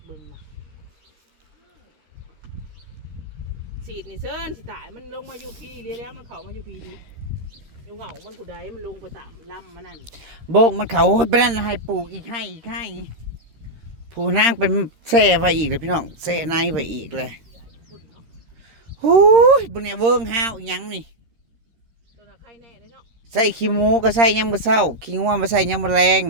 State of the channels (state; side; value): late; left; 13 ms